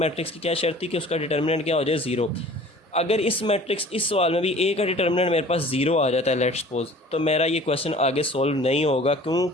की क्या शर्त थी कि उसका डिटर्मिनेंट क्या हो जाए 0। अगर इस मैट्रिक्स इस सवाल में भी A का डिटर्मिनेंट मेरे पास 0 आ जाता है, लेट्स सपोज, तो मेरा ये क्वेश्चन आगे सॉल्व नहीं होगा।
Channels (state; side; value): normal; both; correlation 0.47